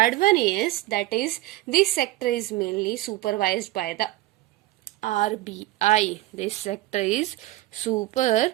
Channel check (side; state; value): left; quieter; 16.8 dB